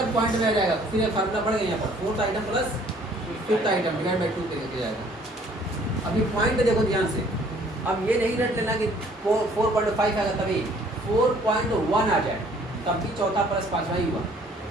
पॉइंट में आ जाएगा तो फिर ये फार्मूला पड़ेगा यहाँ पर 4th item plus 5th item divide by 2 करके जाएगा। अभी पॉइंट देखो ध्यान से, अब ये नहीं रट लेना कि 4.5 आएगा तभी, 4.1 आ जाए तब भी चौथा प्लस पांचवा ही हुआ।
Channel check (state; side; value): normal; both; correlation 0.58